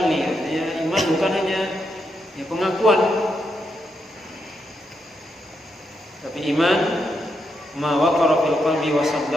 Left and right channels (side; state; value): both; normal; correlation 0.82